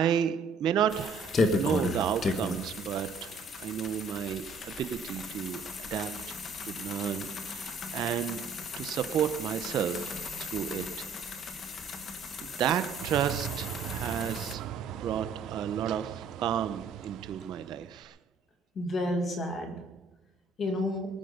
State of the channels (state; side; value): quieter; left; 4.1 dB